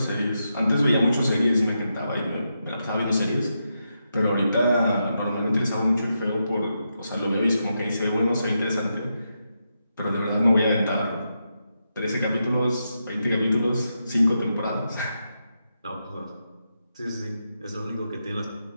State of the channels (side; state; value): both; inverted; correlation -0.85